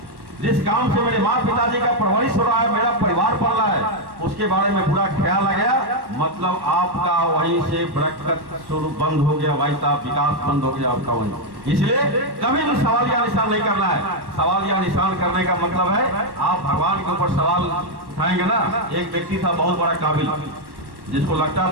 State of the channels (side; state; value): left; late; 1.1 ms